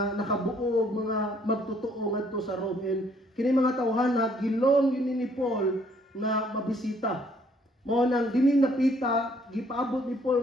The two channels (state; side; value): normal; both; correlation 0.64